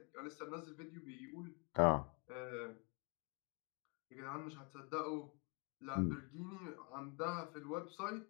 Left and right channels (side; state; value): right; quieter; 34.9 dB